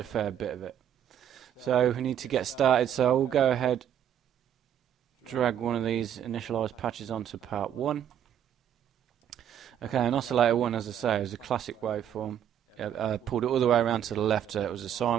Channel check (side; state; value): left; quieter; 9.8 dB